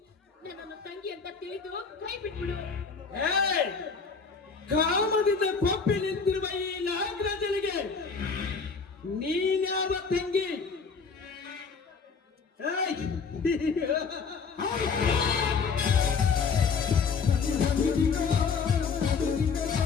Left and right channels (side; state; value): right; quieter; 5.3 dB